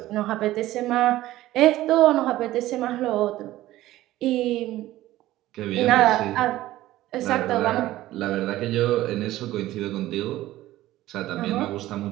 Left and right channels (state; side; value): quieter; left; 15.6 dB